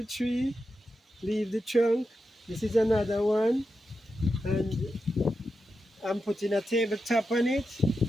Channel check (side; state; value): both; normal; correlation 0.89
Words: tree, leave the trunk. This is another one. And I'm putting a tabletop on it.